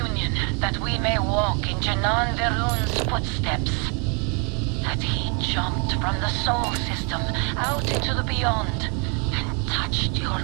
that we may walk in Janan Verun's footsteps. That he jumped from the soul system out into the beyond and touched your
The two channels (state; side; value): quieter; left; 34.9 dB